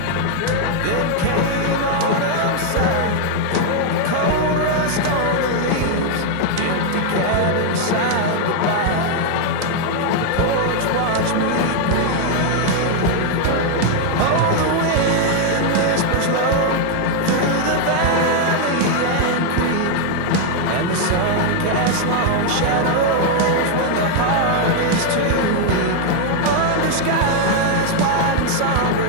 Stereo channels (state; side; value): different; both; correlation 0.00